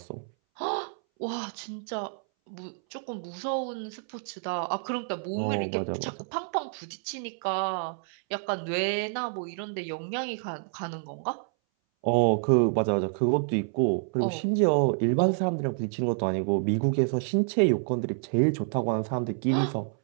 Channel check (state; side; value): silent; left; 59 dB below the other